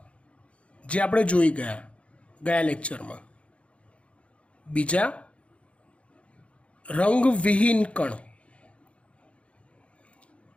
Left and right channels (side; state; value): right; late; 0.061 ms